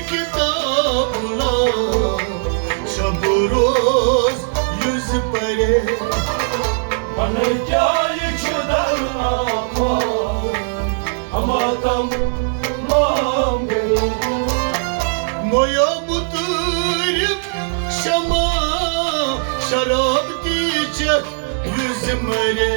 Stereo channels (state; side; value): silent; left; digital silence